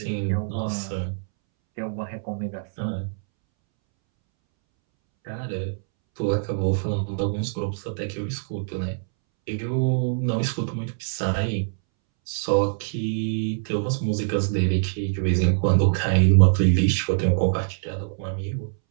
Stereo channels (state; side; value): silent; left; 62 dB below the other